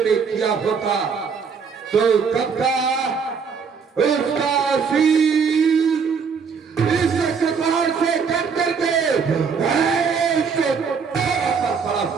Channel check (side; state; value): left; quieter; 5.9 dB